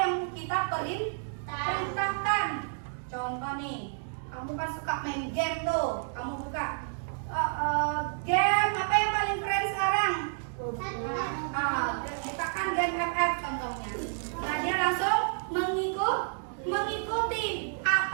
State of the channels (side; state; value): left; silent; digital silence